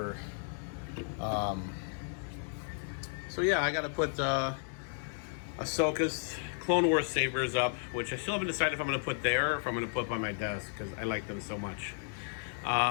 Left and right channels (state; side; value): silent; right; 55 dB below the other